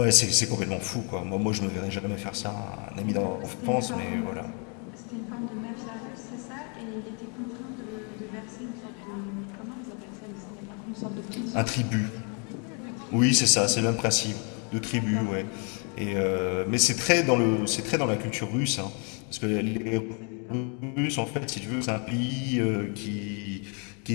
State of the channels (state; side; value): quieter; right; 37.5 dB